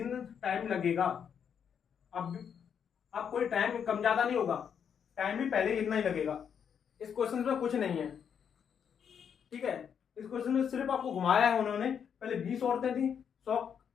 टाइम लगेगा। अब कोई टाइम कम ज्यादा नहीं होगा, टाइम भी पहले इतना ही लगेगा। इस क्वेश्चन में कुछ नहीं है। ठीक है, इस क्वेश्चन में सिर्फ आपको घुमाया है उन्होंने। पहले 20 औरतें थी,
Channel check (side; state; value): right; quieter; 7.7 dB